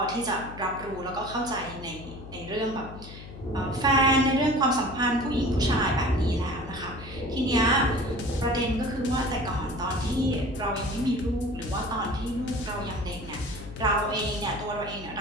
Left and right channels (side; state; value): left; noise; hum, 14 dB below the sound